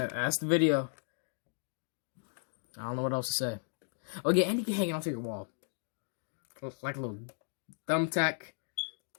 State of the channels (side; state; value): right; silent; digital silence